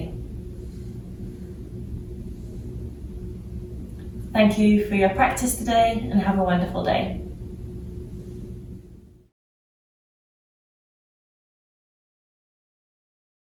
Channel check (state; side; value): identical; both; correlation 1.00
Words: Thank you for your practice today and have a wonderful day.